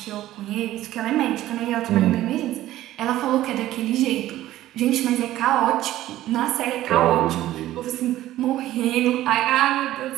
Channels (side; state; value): left; quieter; 14.5 dB